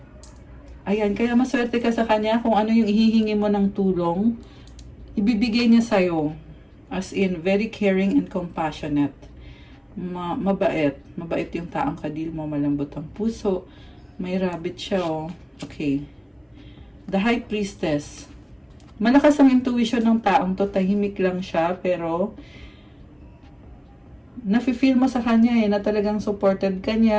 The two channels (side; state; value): both; identical; correlation 1.00